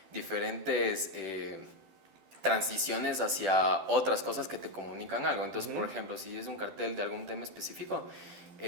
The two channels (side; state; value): left; late; 12 ms